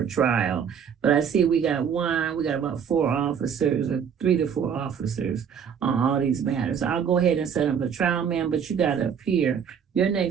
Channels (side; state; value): left; quieter; 7.5 dB